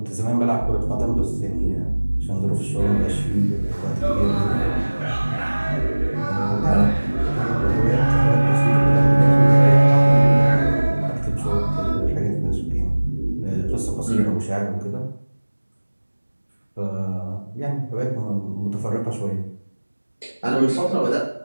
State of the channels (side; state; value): both; inverted; correlation -1.00